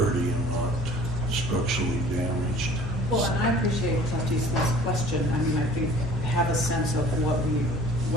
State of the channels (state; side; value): normal; both; correlation 0.49